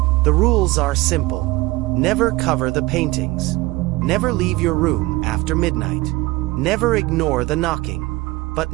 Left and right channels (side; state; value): left; quieter; 20.7 dB